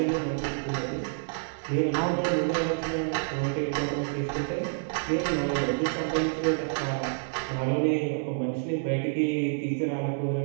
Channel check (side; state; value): left; silent; 59 dB below the other